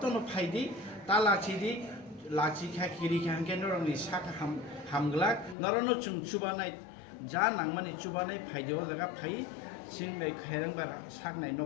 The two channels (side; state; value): right; drops out; at 5.6 s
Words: फाइदि तालासिदि लाचिखा किरिखा के नरकनि साका हामग्ला नरनो जों चुबानाय जा नांमानि चुबानाय फाइदियाव जागा फाइ सिंनाय खेरेंबार साकनाय